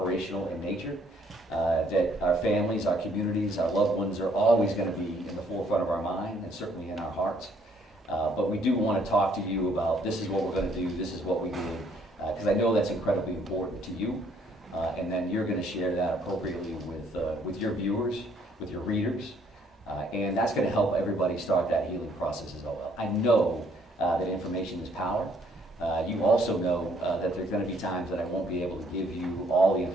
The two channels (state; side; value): normal; both; correlation 0.65